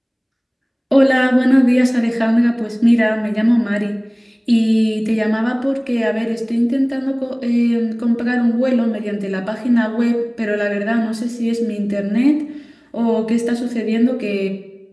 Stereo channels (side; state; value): both; identical; correlation 1.00